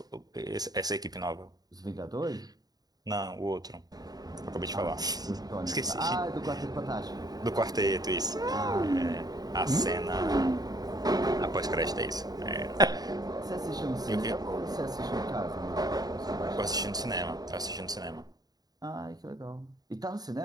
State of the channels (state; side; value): late; left; 0.19 ms